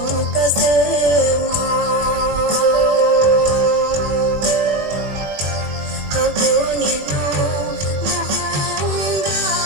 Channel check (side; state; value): left; late; 20 ms